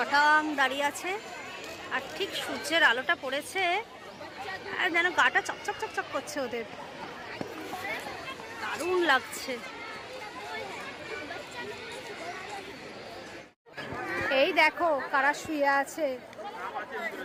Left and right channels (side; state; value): both; identical; correlation 1.00